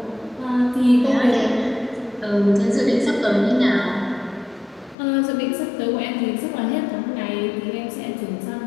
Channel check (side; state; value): right; drops out; at 5.0 s